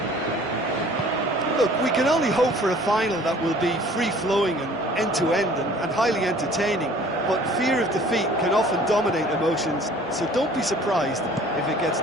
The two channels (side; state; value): both; normal; correlation 0.51